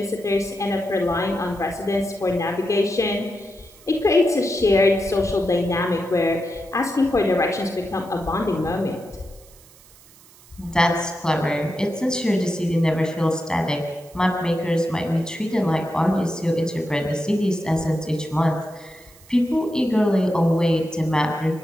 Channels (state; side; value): noise; right; hiss, 25 dB below the sound